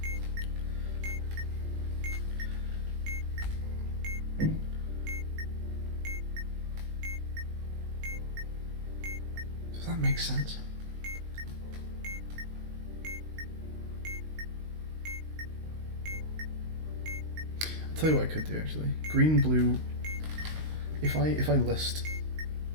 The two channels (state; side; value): late; left; 19 ms